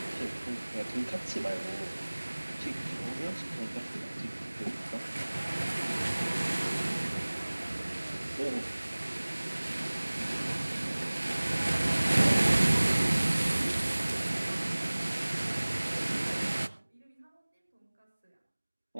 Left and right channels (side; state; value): both; inverted; correlation -1.00